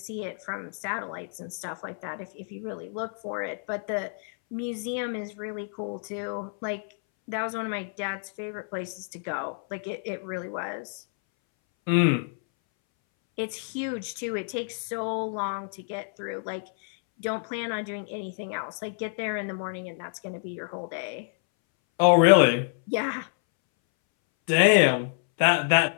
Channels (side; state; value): right; silent; 59 dB below the other